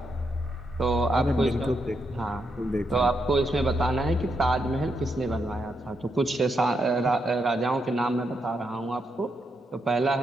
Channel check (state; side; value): normal; both; correlation 0.81